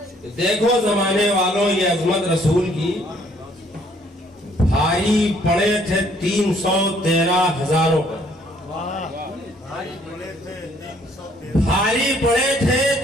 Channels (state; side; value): normal; both; correlation 0.63